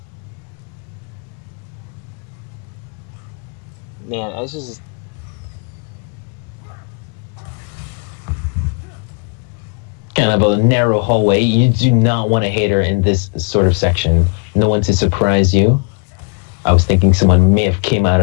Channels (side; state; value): right; quieter; 36.5 dB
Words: Man, I was just... Kind of a narrow hallway. You do not want a hater in this sort of section. No one to surprise you. I was thinking someone may have came out